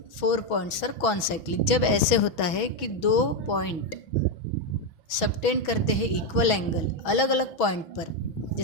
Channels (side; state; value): right; late; 6.2 ms